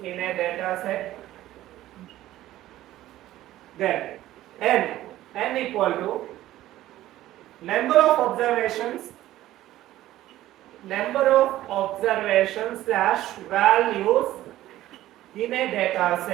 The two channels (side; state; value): left; quieter; 14.6 dB